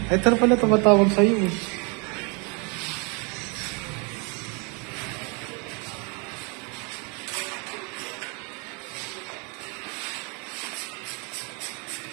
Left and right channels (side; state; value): left; quieter; 32.9 dB